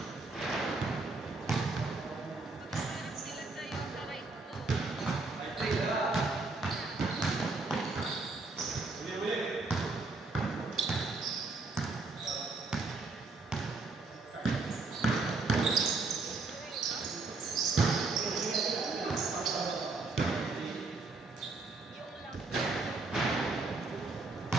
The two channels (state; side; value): quieter; left; 3.7 dB